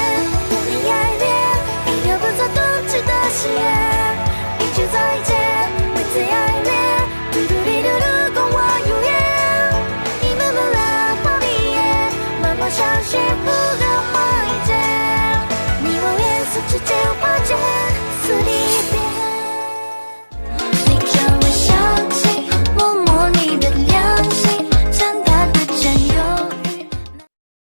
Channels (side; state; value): both; inverted; correlation -1.00